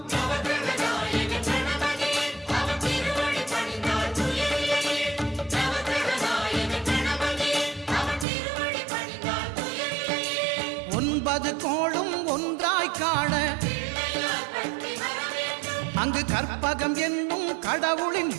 ஒன்பது கோளும் ஒன்றாய் காண அங்கு கற்பகம் என்னும் கடவுளின்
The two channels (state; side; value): drops out; left; at 8.2 s